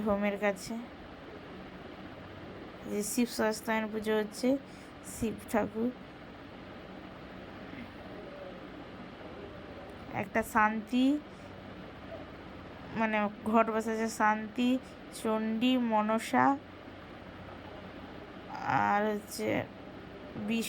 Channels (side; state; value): both; identical; correlation 1.00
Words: হোমের কাছে। যে শিব সস্তায়ন পুজো হচ্ছে, শিব ঠাকুর। একটা শান্তি, মানে ঘট বসেছে শান্তি, চণ্ডী, মনসা, আর হচ্ছে